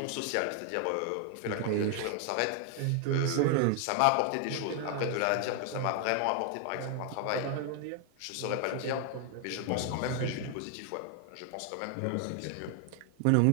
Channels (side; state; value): both; different; correlation 0.00